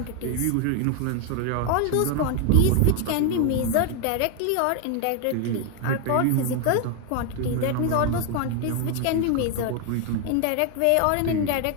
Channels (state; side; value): different; both; correlation 0.01